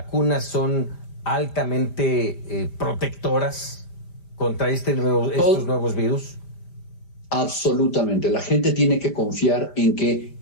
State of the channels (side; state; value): right; late; 5.0 ms